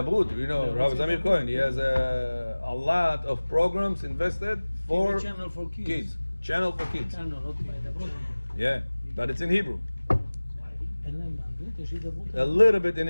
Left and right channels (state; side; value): inverted; both; correlation -1.00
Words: Rabbi Zamir Cohen, he has a lot of programs invested for channel for kids. Channel for kids. Channel, okay. Yeah, but it's in Hebrew. אין להם באנגלית, יש הידברות. A little bit in